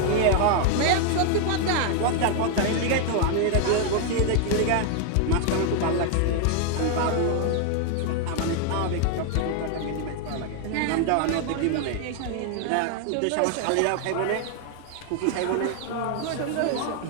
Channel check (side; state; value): both; different; correlation 0.00